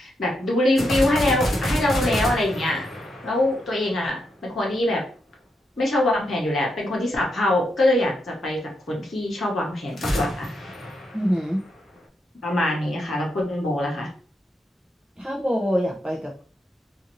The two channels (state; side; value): normal; both; correlation 0.82